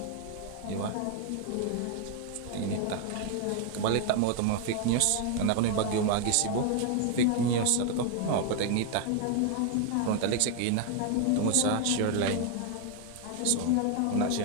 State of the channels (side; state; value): both; different; correlation 0.01